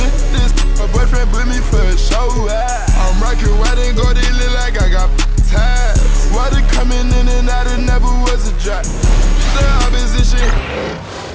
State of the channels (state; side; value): identical; both; correlation 1.00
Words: this, my boyfriend put me for a show. I'm rocking white and gold, it look like I got ties. Water coming in and out, it never was a drop. The opposition.